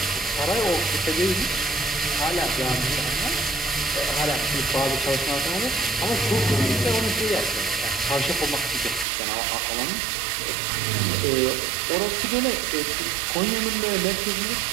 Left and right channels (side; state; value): left; drops out; at 9.1 s